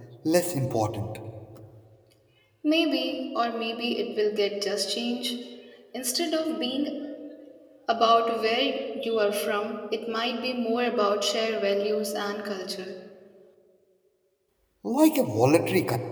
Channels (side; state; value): both; identical; correlation 1.00